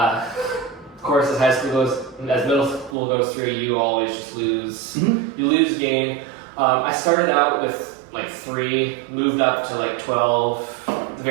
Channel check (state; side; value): drops out; left; at 3.0 s